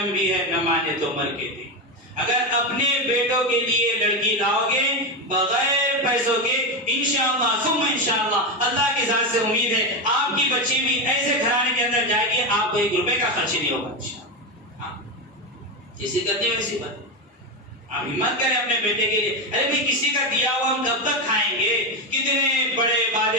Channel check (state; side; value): normal; both; correlation 0.13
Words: بھی ہے، نہ مانے تو مر کے دیکھ۔ اگر اپنے بیٹوں کے لیے لڑکی لاؤ گے بغیر پیسوں کے، انشاءاللہ ثم انشاءاللہ اللہ کی ذات سے امید ہے آپ کی بچی بھی ایسے گھرانے کے اندر جائے گی، آپ کو 1 روپے کا خرچ نہیں ہوگا انشاءاللہ۔ جیسی کرتے ویسی بات، آپ ہمت کریں اپنے بیٹے کے لیے۔ ارے بھائی کسی کا دیا ہوا ہم کب تک کھائیں گے؟ کتنے بڑے